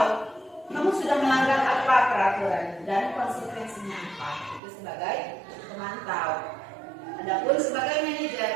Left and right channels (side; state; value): left; drops out; at 4.6 s